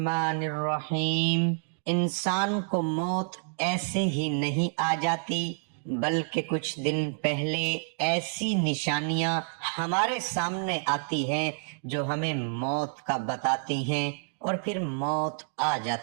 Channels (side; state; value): left; silent; digital silence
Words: الرحیم۔ انسان کو موت ایسے ہی نہیں آ جاتی، بلکہ کچھ دن پہلے ایسی نشانیاں ہمارے سامنے آتی ہیں جو ہمیں موت کا بتاتی ہیں، اور پھر موت آ